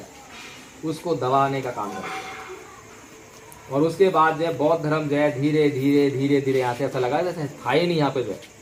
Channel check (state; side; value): identical; both; correlation 1.00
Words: उसको दबाने का काम कर। और उसके बाद जो है बौद्ध धर्म जो है धीरे धीरे धीरे धीरे यहाँ से ऐसा लगा जैसे था ही नहीं यहाँ पे जो है।